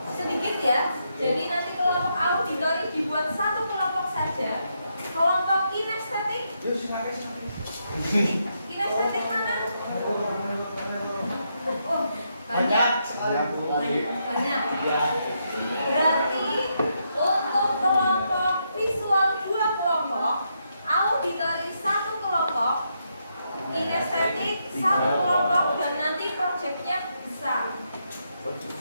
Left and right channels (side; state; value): both; inverted; correlation -0.80